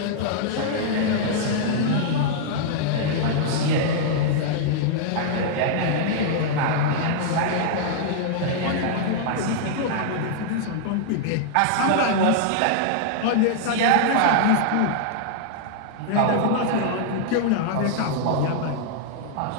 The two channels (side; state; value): both; different; correlation -0.01